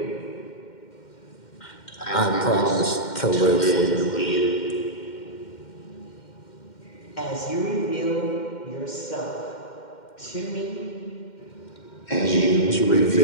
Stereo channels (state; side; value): late; right; 2.1 ms